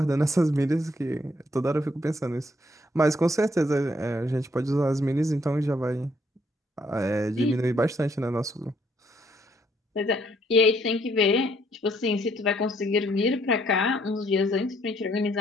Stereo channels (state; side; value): normal; both; correlation 0.68